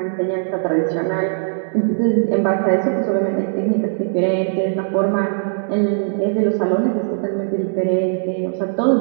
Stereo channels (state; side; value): silent; left; digital silence